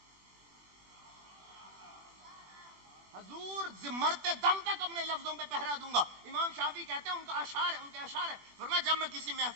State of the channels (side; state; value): left; late; 21 ms